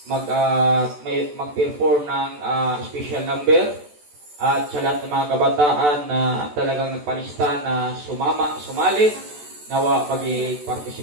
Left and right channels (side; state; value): left; late; 14 ms